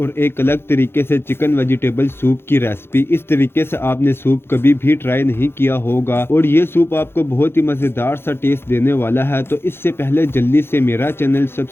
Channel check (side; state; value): right; late; 0.11 ms